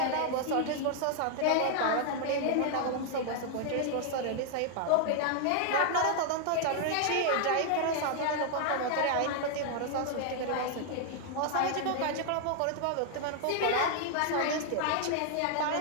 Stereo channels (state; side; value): different; both; correlation 0.00